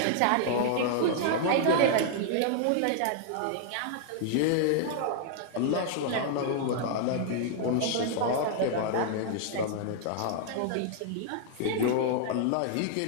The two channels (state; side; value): different; both; correlation -0.01